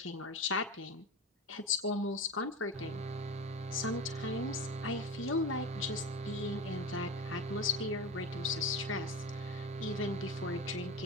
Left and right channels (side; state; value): both; normal; correlation 0.26